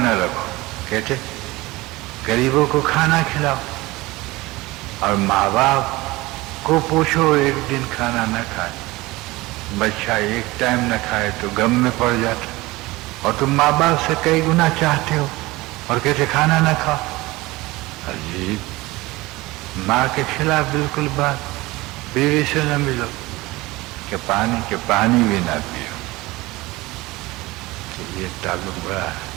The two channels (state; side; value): quieter; left; 20.6 dB